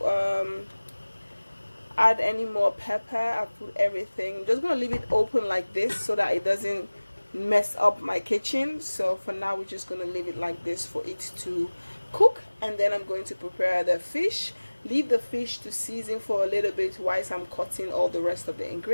add any more pepper. I put everything. I'm just gonna leave it open like this so that it doesn't mess up my kitchen. So for now we're just gonna leave it like this for it to cook, and then I'm going to prepare the fish. Leave the fish to season for a little bit whilst I'm cutting all the rest of the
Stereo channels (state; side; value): inverted; both; correlation -1.00